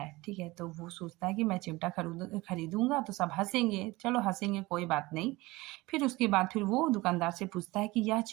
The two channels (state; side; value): quieter; left; 21.1 dB